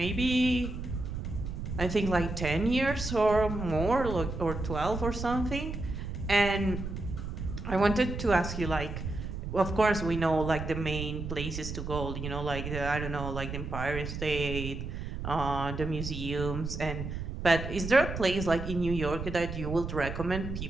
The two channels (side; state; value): right; noise; rumble, 6 dB below the sound